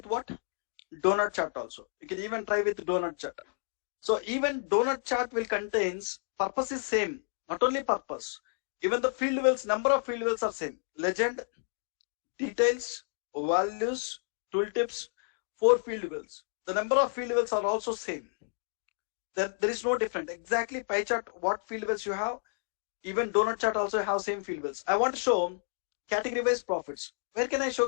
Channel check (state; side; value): silent; right; 57 dB below the other